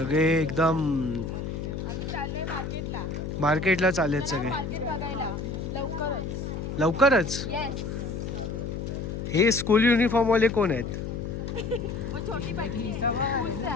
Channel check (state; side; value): noise; left; hum, 5 dB below the sound